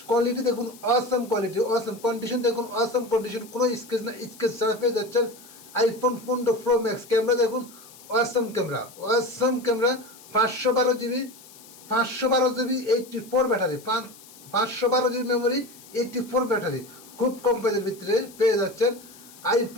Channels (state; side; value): noise; left; hiss, 21 dB below the sound